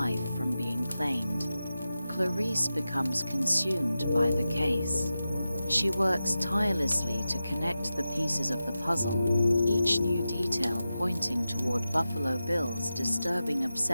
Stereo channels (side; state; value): both; inverted; correlation -0.93